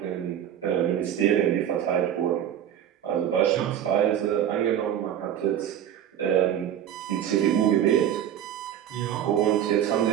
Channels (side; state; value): left; quieter; 10.1 dB